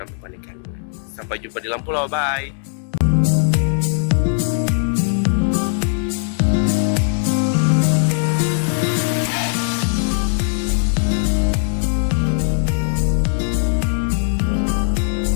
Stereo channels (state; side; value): silent; right; digital silence